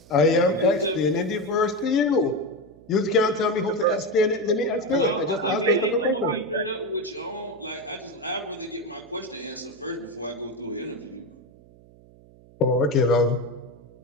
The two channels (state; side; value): noise; right; hum, 25 dB below the sound